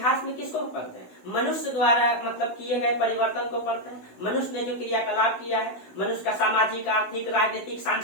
में किसको पढ़ते हैं, मनुष्य द्वारा मतलब किए गए परिवर्तन को पढ़ते हैं, मनुष्य ने जो क्रियाकलाप किया है, मनुष्य का सामाजिक, आर्थिक, राजनीतिक,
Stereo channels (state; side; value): late; right; 16 ms